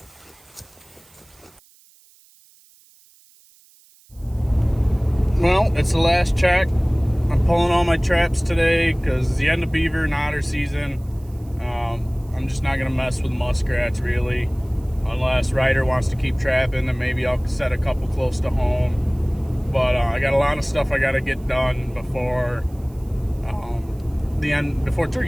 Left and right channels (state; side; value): noise; right; hiss, 29 dB below the sound